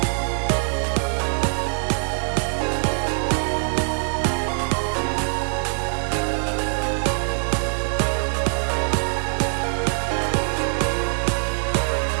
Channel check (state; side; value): silent; left; 63 dB below the other